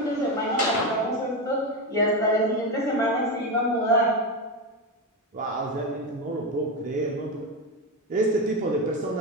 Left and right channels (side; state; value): both; normal; correlation 0.14